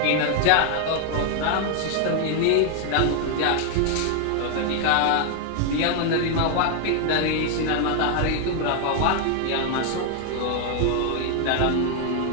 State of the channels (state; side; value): different; both; correlation 0.00